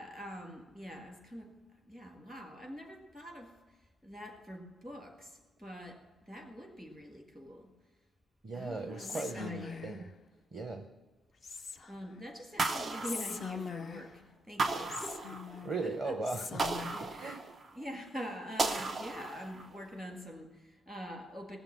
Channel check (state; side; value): normal; both; correlation 0.79